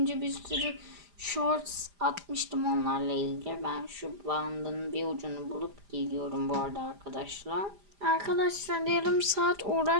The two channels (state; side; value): late; left; 5.0 ms